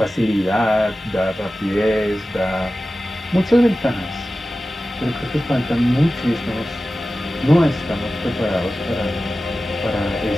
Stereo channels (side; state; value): both; normal; correlation 0.95